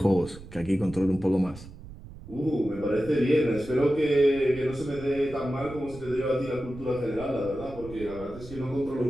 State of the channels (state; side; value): noise; right; rumble, 16 dB below the sound